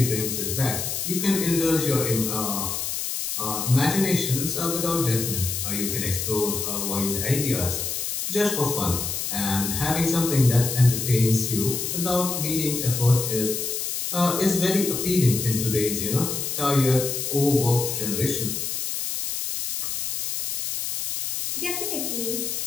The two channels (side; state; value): left; noise; hiss, 3 dB below the sound